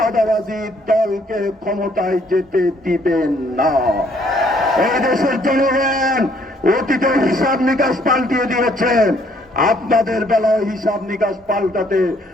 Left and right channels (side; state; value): both; normal; correlation 0.65